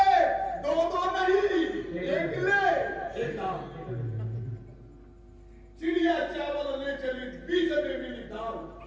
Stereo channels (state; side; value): identical; both; correlation 1.00